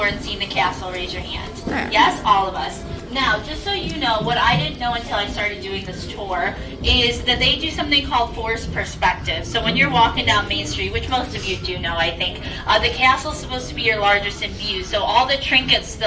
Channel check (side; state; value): both; identical; correlation 1.00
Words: and seen the castle? Raise your hand. Yeah. Yes, all of us. Now, just so you know, what I didn't know until I started doing this tour is that they do something called forced perspective. So when you're walking down Main Street, which most of you do know, I think, the castle's supposed to be your largest in view. So all the trinkets to